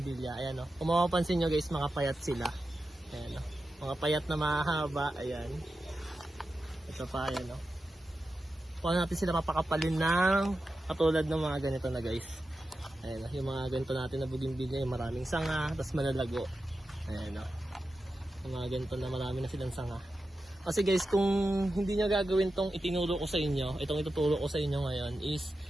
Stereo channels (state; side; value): normal; both; correlation 0.91